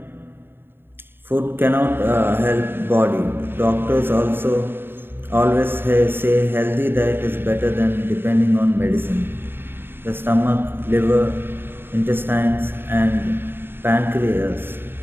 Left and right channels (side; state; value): left; late; 0.10 ms